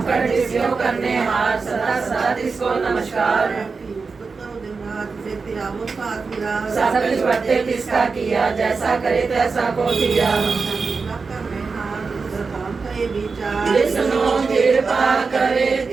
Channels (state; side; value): quieter; left; 4.6 dB